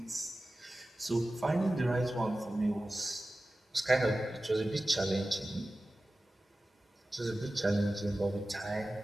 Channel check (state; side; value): normal; both; correlation 0.95